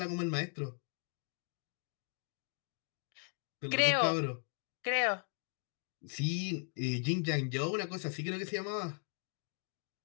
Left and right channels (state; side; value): silent; right; 52 dB below the other